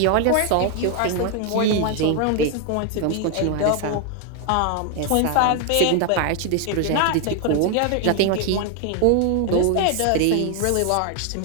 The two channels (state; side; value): different; both; correlation 0.00